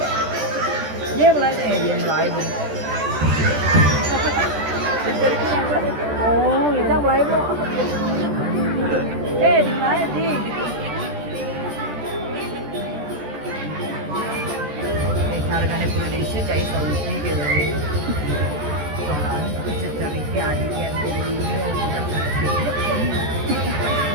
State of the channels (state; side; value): late; left; 14 ms